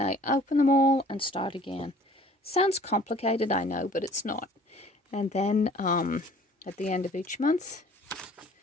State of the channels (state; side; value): normal; both; correlation 0.52